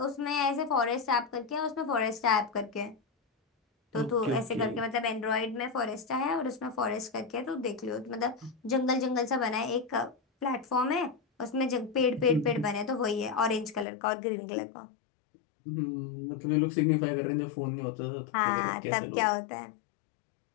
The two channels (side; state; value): right; drops out; at 13.9 s